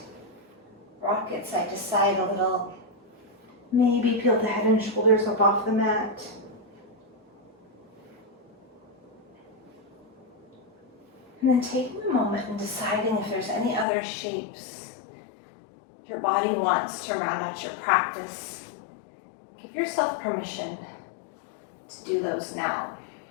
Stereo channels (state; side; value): drops out; right; at 13.9 s